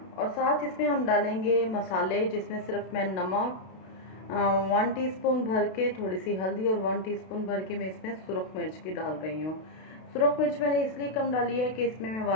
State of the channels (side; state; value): right; late; 32 ms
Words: और साथ इसमें हम डालेंगे मसाले, जिसमें सिर्फ मैं नमक 1 टीस्पून भर के, थोड़ी सी हल्दी और 1 टीस्पून भर के मैं इसमें सुरख मिर्च की डाल रही हूँ। सुरख मिर्च मैंने इसलिए कम डाली है कि इसमें मैं